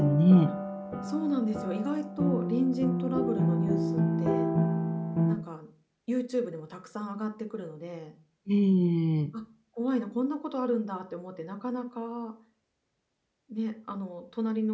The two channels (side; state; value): both; identical; correlation 1.00